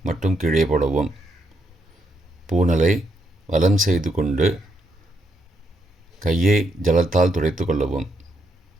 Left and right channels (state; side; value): normal; both; correlation 0.78